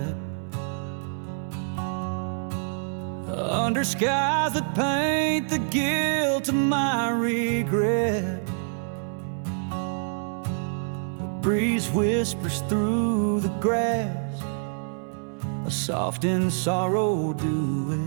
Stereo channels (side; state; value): left; silent; digital silence